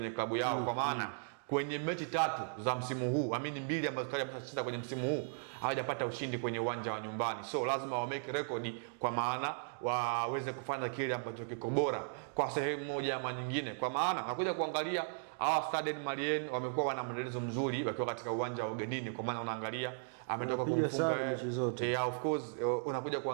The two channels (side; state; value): left; silent; digital silence